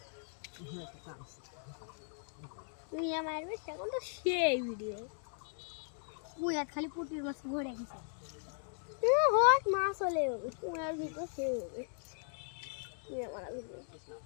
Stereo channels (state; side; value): silent; right; digital silence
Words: খালি পুটির মাছ ভরে গেছে মাছ হলে তোমার ভিতর সে হবে